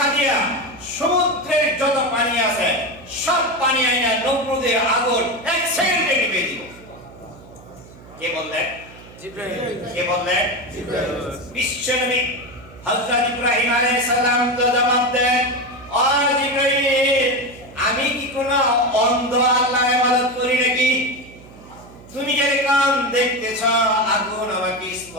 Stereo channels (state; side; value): noise; right; hum, 20 dB below the sound